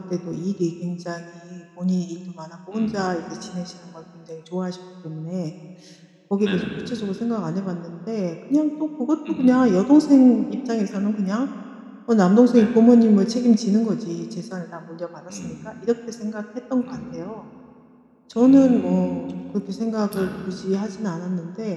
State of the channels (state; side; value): identical; both; correlation 1.00